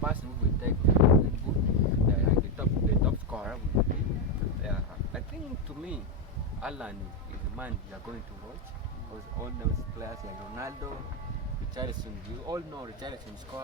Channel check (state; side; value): normal; both; correlation 0.05